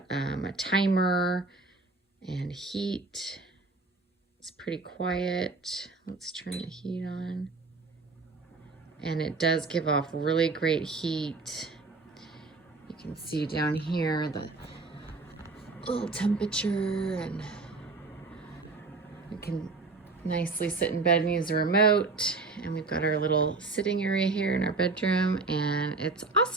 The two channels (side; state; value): left; quieter; 3.8 dB